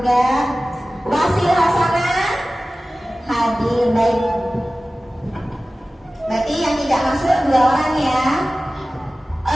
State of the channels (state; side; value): normal; both; correlation 0.96